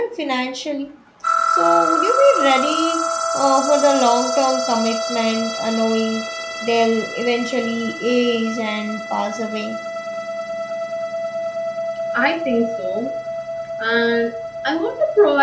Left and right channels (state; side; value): identical; both; correlation 1.00